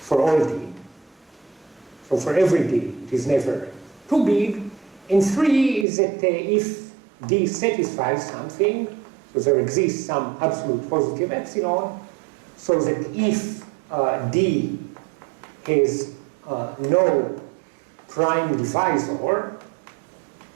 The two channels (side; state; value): left; drops out; at 5.9 s